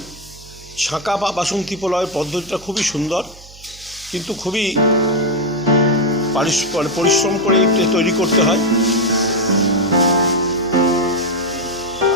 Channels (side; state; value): right; noise; hum, 21 dB below the sound